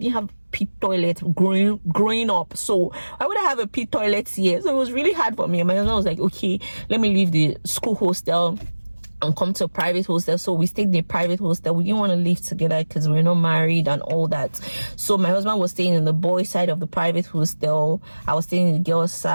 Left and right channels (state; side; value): inverted; both; correlation -1.00